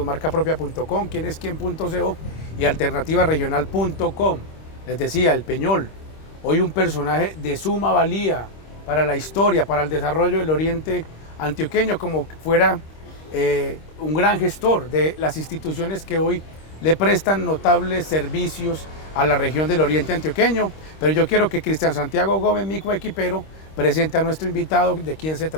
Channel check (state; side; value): late; right; 26 ms